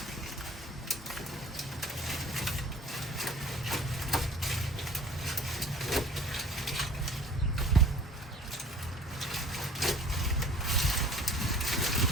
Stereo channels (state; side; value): normal; both; correlation 0.48